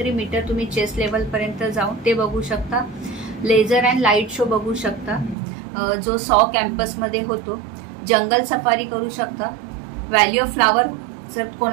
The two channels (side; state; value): left; drops out; at 5.4 s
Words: मीटर तुम्ही चेस्ट लेवल पर्यंत जाऊन ते बघू शकता. लेझर अँड लाईट शो बघू शकता जो सॉ कॅम्पस मध्ये होतो. जंगल सफारी करू शकता. व्हॅली ऑफ फ्लावर जर